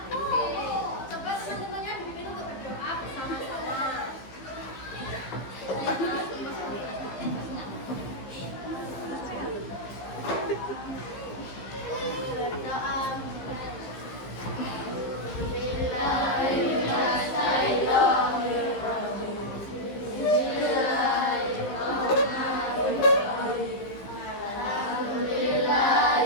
Oke, coba teman-temannya dipimpin untuk berdoa bersama-sama.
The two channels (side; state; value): right; late; 15 ms